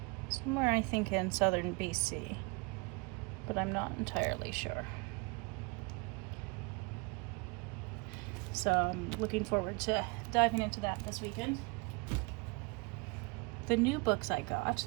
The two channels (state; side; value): quieter; left; 27.9 dB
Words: somewhere, I think, in southern BC, but I'm not entirely sure. So I'm looking forward to diving into that this weekend. The new books I got,